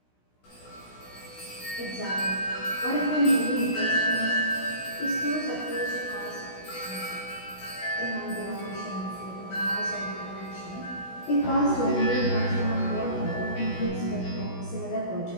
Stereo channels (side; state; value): right; late; 16 ms